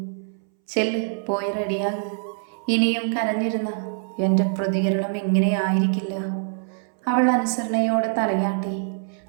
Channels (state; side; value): silent; left; 63 dB below the other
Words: ചെല്ല്, പോയി റെഡിയാക്. ഇനിയും കരഞ്ഞിരുന്ന എൻ്റെ പ്രതികരണം ഇങ്ങനെയായിരിക്കില്ല. അവൾ അനുസരണയോടെ തലയാട്ടി.